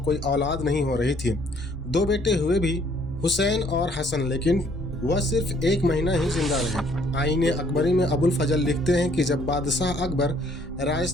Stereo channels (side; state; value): both; normal; correlation 0.63